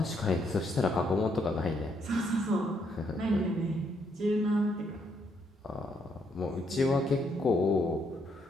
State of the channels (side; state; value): both; normal; correlation 0.74